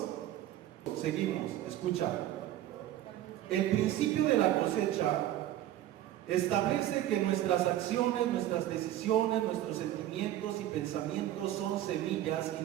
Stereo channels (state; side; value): quieter; left; 13.1 dB